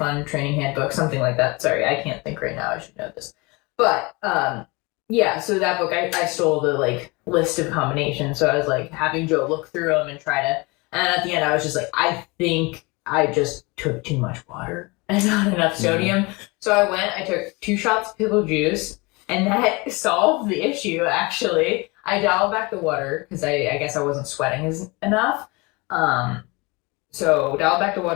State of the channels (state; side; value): quieter; right; 26.0 dB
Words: Training Handbook, something like that. Sorry, I can't think right now. I should know this. But yeah, so that book I stole the list of combinations. So I was having Joe look through them and try to. And at the end, I was just I think I just took too much water and not enough sodium. Mm-hmm. So I took 2 shots of pickle juice, and that solved the issue, actually. I dialed back the water, because I guess I wasn't sweating enough. So dialed back the